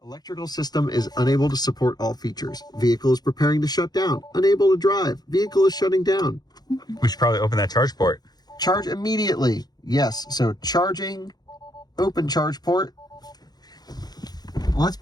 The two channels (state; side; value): late; right; 0.19 ms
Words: Electrical system is unable to support all features. Vehicle is preparing to shut down. Unable to drive. Vehicle is shutting down. We should probably open that charge port. Charge immediately. Yes, so charging, open charge port. Let's